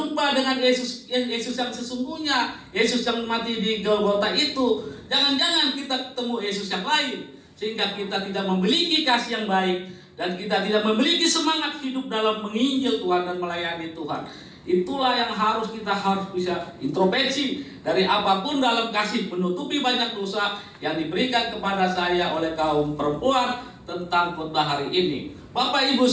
dengan Yesus yang sesungguhnya, Yesus yang mati di Golgota itu. Jangan-jangan kita ketemu Yesus yang lain, sehingga kita tidak memiliki kasih yang baik dan kita tidak memiliki semangat hidup dalam menginjil Tuhan dan melayani Tuhan. Itulah yang kita harus bisa introspeksi dari apapun dalam kasih menutupi banyak dosa yang diberikan kepada saya oleh kaum perempuan tentang khotbah hari ini. Bapak Ibu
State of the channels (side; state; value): both; identical; correlation 1.00